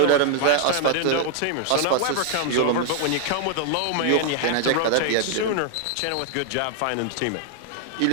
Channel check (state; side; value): different; both; correlation 0.00